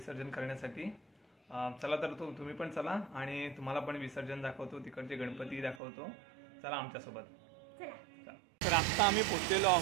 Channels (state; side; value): drops out; left; at 5.8 s